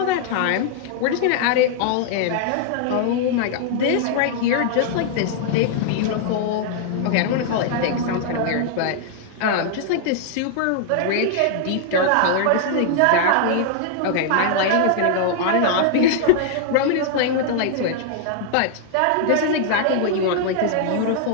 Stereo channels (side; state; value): both; different; correlation -0.01